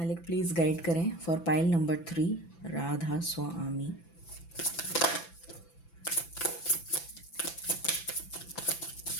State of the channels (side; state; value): right; late; 5.9 ms